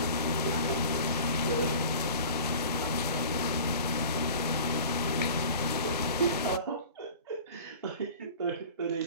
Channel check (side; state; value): both; inverted; correlation -0.41